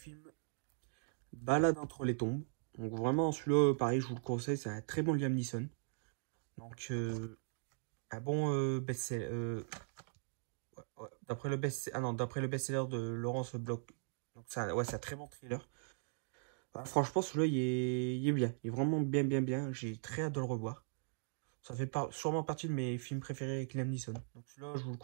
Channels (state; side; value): silent; left; digital silence